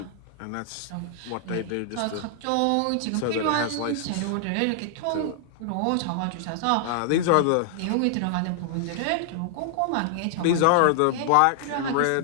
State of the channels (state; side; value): different; both; correlation 0.00